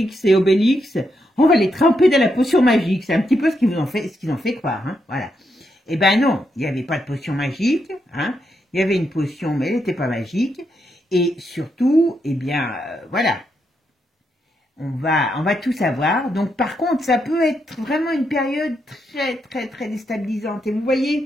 et Obélix, on va les tremper dans la potion magique. C'est un petit peu ce qu'ils ont fait croire, hein, voilà. Eh ben non, il n'y avait pas de potion magique, hein. Il y avait une potion, mais elle n'était pas magique. Et surtout, eh bien, voilà, on va tout savoir. Donc, par contre, ça peut être vraiment une période très, très, très déstabilisante. Et vous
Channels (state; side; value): normal; both; correlation 0.81